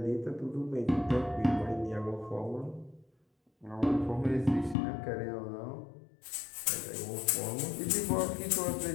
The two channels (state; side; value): drops out; right; at 4.8 s